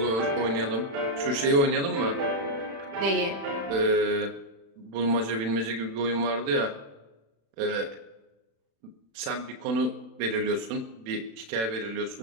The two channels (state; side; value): late; left; 36 ms